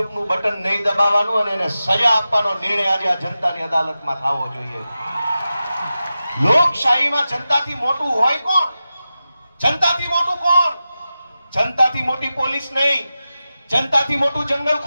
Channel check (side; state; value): both; inverted; correlation -0.93